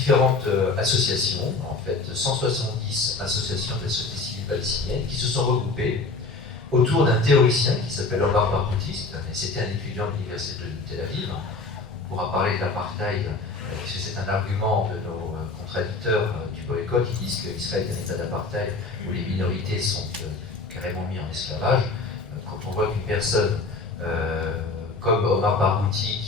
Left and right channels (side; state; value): right; quieter; 3.8 dB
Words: associations, en fait 170 associations de la société civile palestinienne, qui se sont regroupées autour d'un théoricien qui s'appelle Omar Barghouti, c'était un étudiant de l'université de Tel Aviv. On pourra parler de l'apartheid, puisque c'est un argument de nos contradicteurs du boycott. Ils disent qu'Israël est un état d'apartheid où les minorités sont carrément mises en esclavage. Quand on voit qu'une personne comme Omar Barghouti,